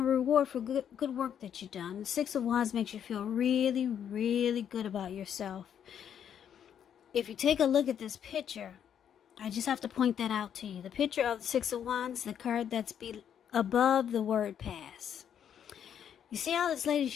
reward for good work that you've done. The Six of Wands makes you feel really, really good about yourself. If you take a look at this picture, I just have to point that out to you. The picture of the Six of Wands, the card that's above the word pass. You see how this lady,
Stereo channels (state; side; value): quieter; right; 8.9 dB